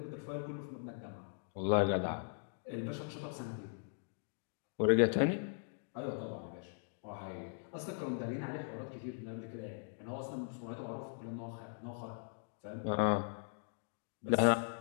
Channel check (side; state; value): right; silent; digital silence